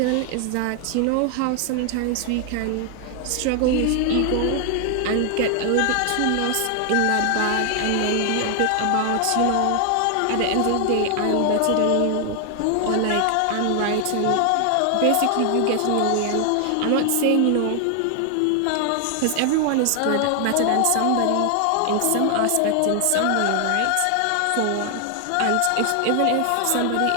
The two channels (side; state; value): both; different; correlation 0.00